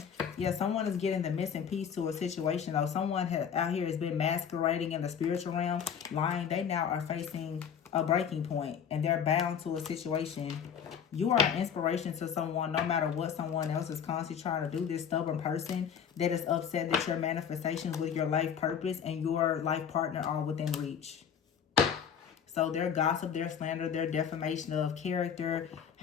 Yeah, someone is getting the missing piece to a situation, though. Someone out here has been masquerading in the spiritual realm, lying. They now are facing a breaking point, and they're bound to a situation. You are an inspiration to someone, no matter what someone else is constantly trying to do. This stubborn person that is upset that your manifestations with your life purpose and your life partner are within reach. So their gossip, their slander, their defamation of character,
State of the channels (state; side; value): quieter; right; 7.7 dB